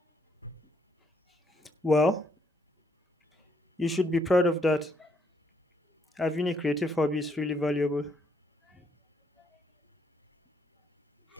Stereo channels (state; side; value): normal; both; correlation 0.71